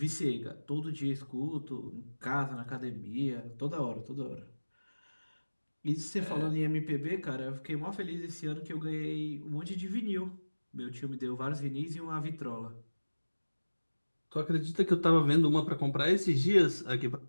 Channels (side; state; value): both; inverted; correlation -1.00